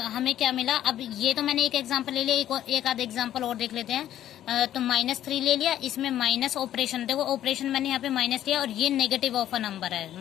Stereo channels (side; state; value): right; quieter; 11.8 dB